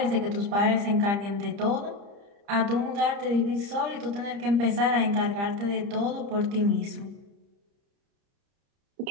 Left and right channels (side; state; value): left; late; 30 ms